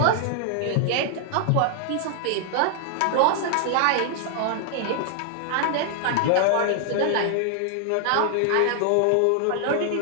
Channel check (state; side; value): different; both; correlation 0.00